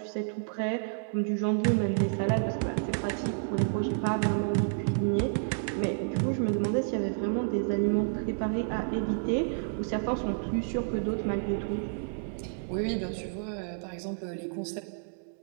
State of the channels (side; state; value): left; silent; digital silence